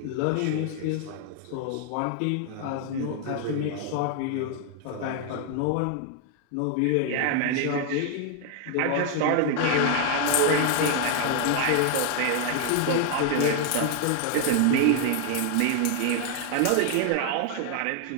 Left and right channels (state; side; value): different; both; correlation 0.00